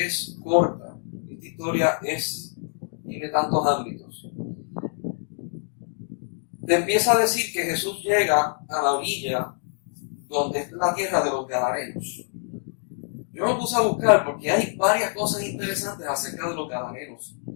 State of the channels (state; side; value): silent; right; 60 dB below the other